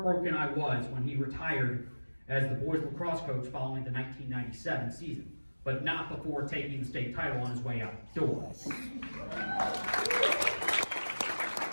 I was when he retired as the boys lacrosse coach following the 1997 season, but not before taking the state title on his way out the door.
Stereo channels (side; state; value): both; inverted; correlation -1.00